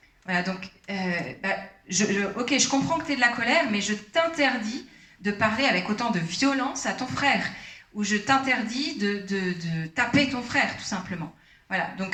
Voilà, donc, ok, je comprends que tu es de la colère, mais je t'interdis de parler avec autant de violence à ton frère, ou je t'interdis de taper ton frère, tout simplement. Voilà,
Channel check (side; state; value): both; identical; correlation 1.00